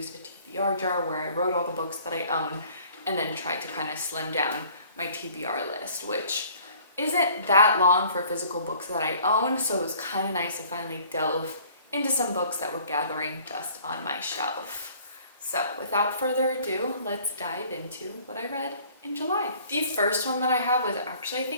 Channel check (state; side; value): inverted; both; correlation -0.54